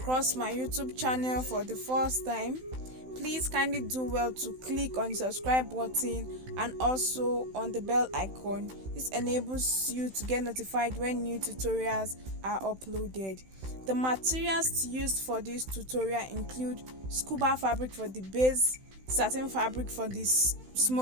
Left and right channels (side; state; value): left; late; 16 ms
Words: my YouTube channel for the first time, please kindly do well to click on the subscribe button and also on the bell icon. This enables you to get notified when new tutorials are uploaded. The materials used for this tutorial include scuba fabric for the base, satin fabric for this